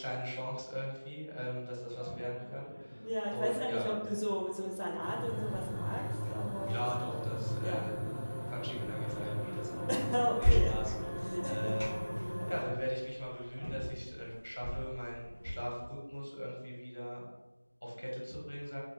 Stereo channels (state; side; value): inverted; both; correlation -1.00